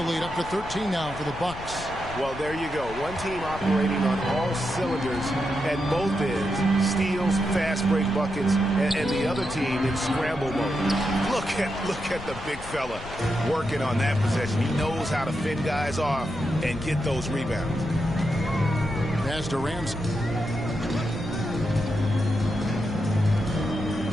lead up to 13 now for the Bucks. Well, there you go. One team operating on all cylinders at both ends. Steals, fast break buckets, and the other team in scramble mode. Look at the big fella working on that possession. He knows how to fend guys off and get those rebounds. Pass to Ramsey.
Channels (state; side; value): noise; left; rumble, 13 dB below the sound